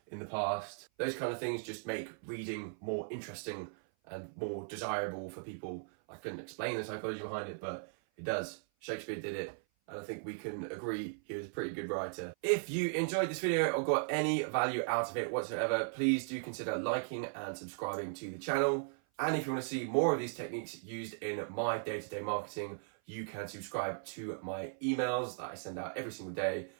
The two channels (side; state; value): left; silent; 53 dB below the other